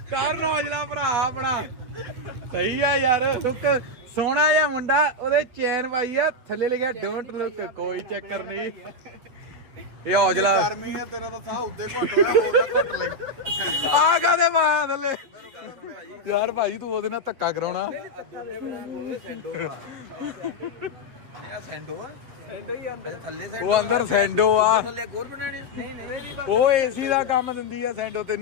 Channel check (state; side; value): late; left; 8.1 ms